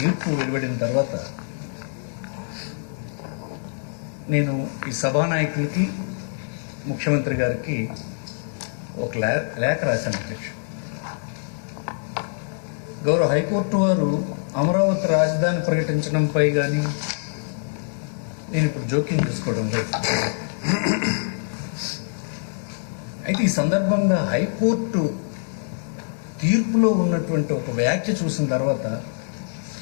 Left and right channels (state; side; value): silent; right; digital silence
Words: వెలువడిన తర్వాత నేను ఈ సభానాయకులకి ముఖ్యమంత్రి గారికి ఒక లేఖ రాశాను అధ్యక్ష. గౌరవ హైకోర్టు వారు అమరావతి రాజధాని ప్రకటించడంపై కానీ నేను ఇప్పుడు జోక్యం చేసుకోవడం లేదు. అయితే ఈ సందర్భంగా హైకోర్టు తీర్పులో ఉన్నటువంటి ఒక వ్యాఖ్య చూసిన తర్వాత